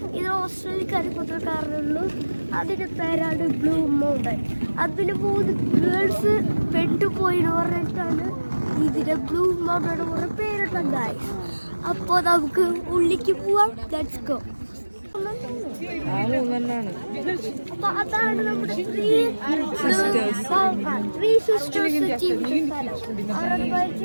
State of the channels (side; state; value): both; inverted; correlation -1.00